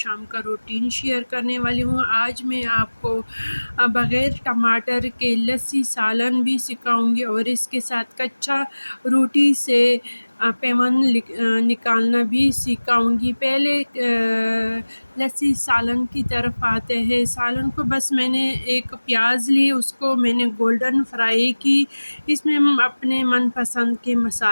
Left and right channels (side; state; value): both; inverted; correlation -1.00